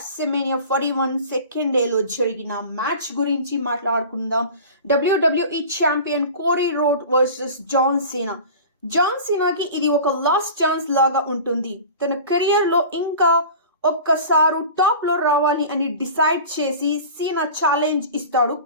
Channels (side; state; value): both; inverted; correlation -0.37